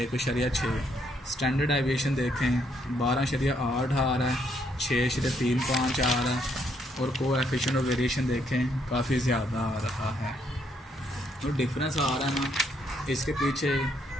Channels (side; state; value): both; normal; correlation 0.72